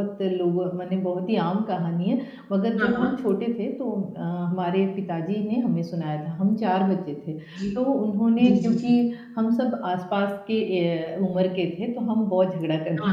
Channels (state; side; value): identical; both; correlation 1.00